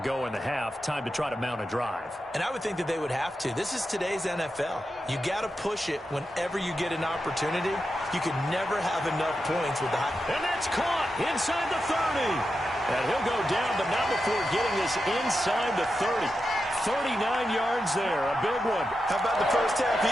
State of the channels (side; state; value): both; normal; correlation 0.89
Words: in the half. Time to try to mount a drive. And I would think that they would have to. This is today's NFL. You got to push it whenever you get an opportunity. You can never have enough points with the high. And that's caught inside the 30. And he'll go down, but not before getting this inside the 30. 39 yards there, a big one. How about the first half